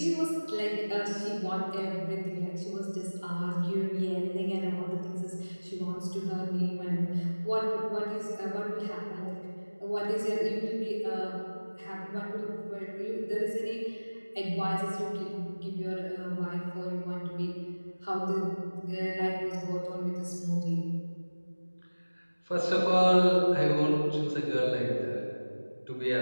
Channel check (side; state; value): both; inverted; correlation -1.00